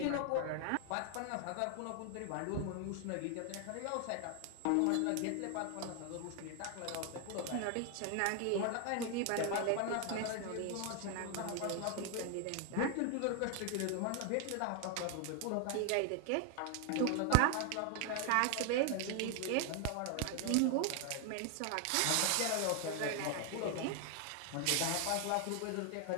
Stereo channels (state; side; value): different; both; correlation 0.00